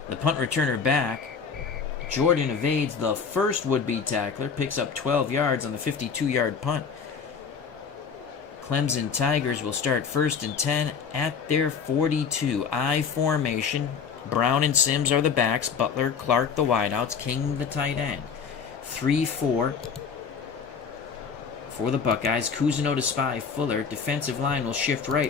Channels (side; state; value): right; quieter; 6.1 dB